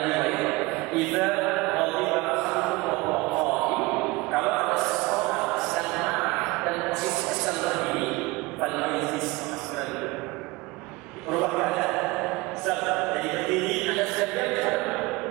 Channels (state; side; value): quieter; left; 22.8 dB